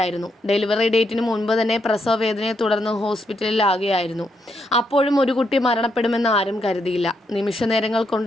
ഡെലിവറി ഡേറ്റിന് മുൻപ് തന്നെ പ്രസവ വേദനയെ തുടർന്ന് ഹോസ്പിറ്റലിലാകുകയായിരുന്നു. അപ്പോഴും ഒരു കുട്ടി മരണപ്പെടുമെന്ന് ആരും കരുതിയില്ല. നിമിഷനേരങ്ങൾ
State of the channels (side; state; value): both; normal; correlation 0.79